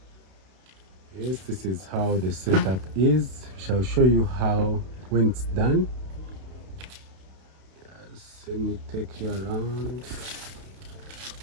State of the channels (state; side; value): late; left; 31 ms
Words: Yes, this is how the setup is. We shall show you how when it's done. Yes, let me take you around.